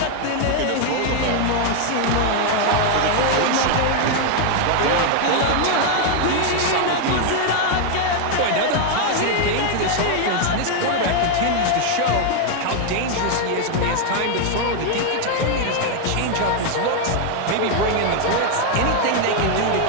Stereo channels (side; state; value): both; different; correlation 0.00